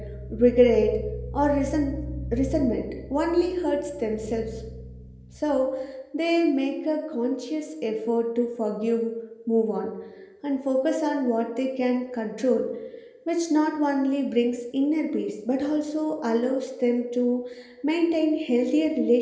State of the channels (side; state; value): both; identical; correlation 1.00